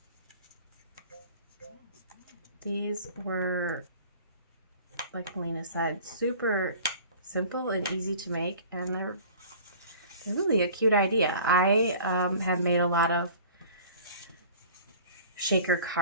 These were, like Melina said, super simple and easy to make, and they're really a cute idea. I have made a lot of shaker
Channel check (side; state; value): both; inverted; correlation -0.45